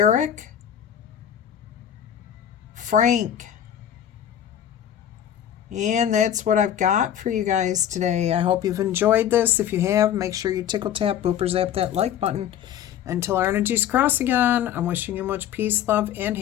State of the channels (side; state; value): right; quieter; 10.2 dB